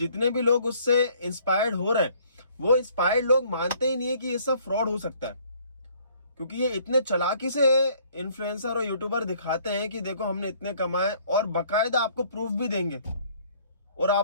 भी लोग उससे इंस्पायर्ड हो रहे हैं, वो इंस्पायर्ड लोग मानते ही नहीं है कि ये सब फ्रॉड हो सकता है। क्योंकि ये इतने चालाकी से इन्फ्लुएंसर और यूट्यूबर दिखाते हैं कि देखो हमने इतने कमाए, और बकायदा आपको प्रूफ भी देंगे और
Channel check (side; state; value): both; inverted; correlation -0.60